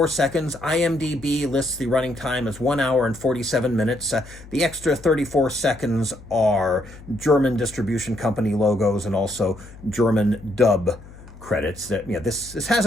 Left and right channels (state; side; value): noise; left; hum, 19 dB below the sound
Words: seconds. IMDb lists the running time as 1 hour and 47 minutes. The extra 34 seconds are German distribution company logos and also German dub credits. That this has